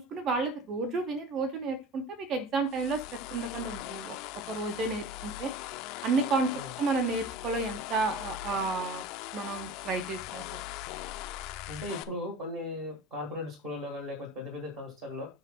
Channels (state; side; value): normal; both; correlation 0.36